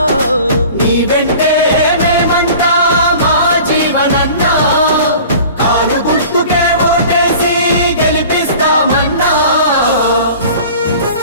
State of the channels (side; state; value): both; inverted; correlation -0.43